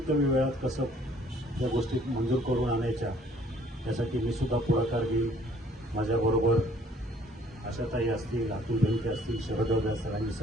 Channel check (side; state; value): both; normal; correlation 0.59